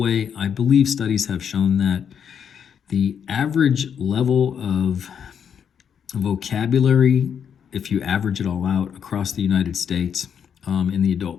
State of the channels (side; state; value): right; quieter; 7.8 dB